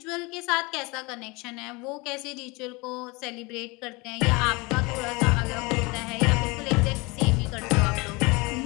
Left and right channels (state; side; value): quieter; right; 26.0 dB